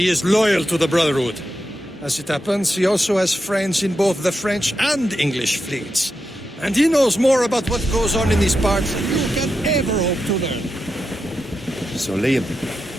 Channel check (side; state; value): both; normal; correlation 0.87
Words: is loyal to the Brotherhood. As it happens, he also has friends in both the French and English fleets. And he knows more about what goes on in these parts than you can ever hope to learn. So, Liam,